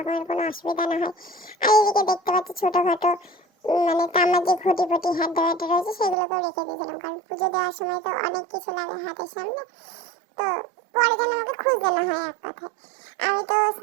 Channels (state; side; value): drops out; left; at 6.2 s